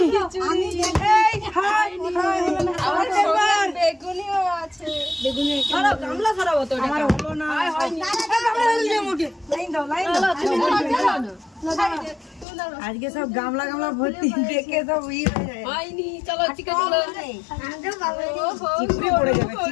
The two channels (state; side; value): drops out; right; at 12.5 s